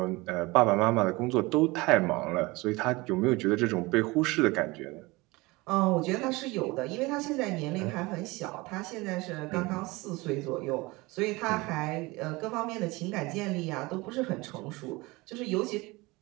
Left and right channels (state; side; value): quieter; left; 22.9 dB